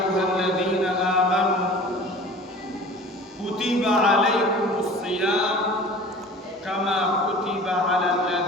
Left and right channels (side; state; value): both; normal; correlation 0.43